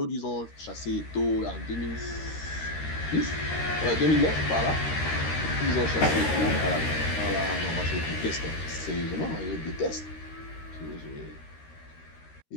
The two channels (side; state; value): right; late; 13 ms